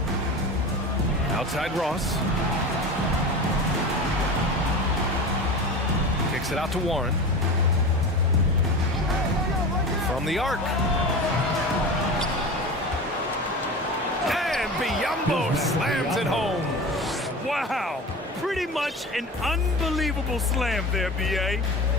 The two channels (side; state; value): both; normal; correlation 0.31